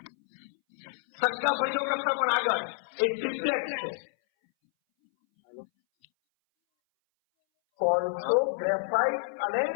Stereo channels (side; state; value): right; silent; 59 dB below the other